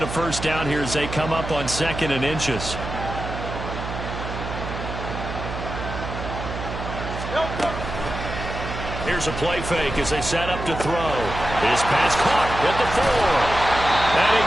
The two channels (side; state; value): right; noise; hum, 7 dB below the sound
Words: a first down here as they come up on 2nd and inches. Here's a play fake as they set up to throw. His pass caught at the 4. And he